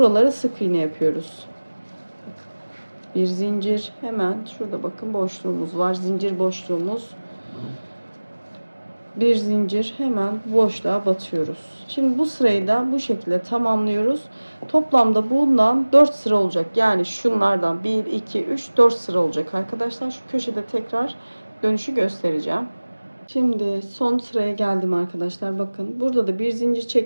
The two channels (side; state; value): both; inverted; correlation -1.00